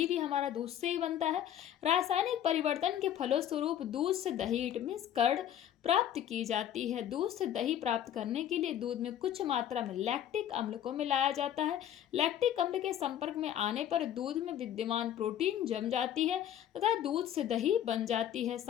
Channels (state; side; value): quieter; right; 10.7 dB